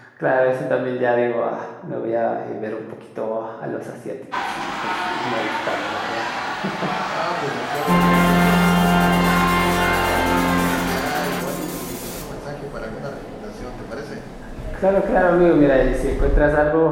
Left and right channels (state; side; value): identical; both; correlation 1.00